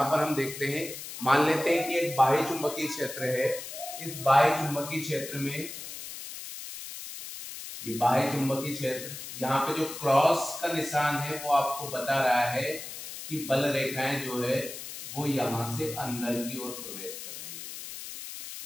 पर हम देखते हैं, मान लेते हैं कि एक बाह्य चुंबकीय क्षेत्र है। इस बाह्य चुंबकीय क्षेत्र में ये बाह्य चुंबकीय क्षेत्र, यहाँ पे जो क्रॉस का निशान है वो आपको बता रहा है कि बल रेखाएं जो है वो यहाँ से अंदर की ओर प्रवेश कर रही है।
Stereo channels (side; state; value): left; noise; hiss, 10 dB below the sound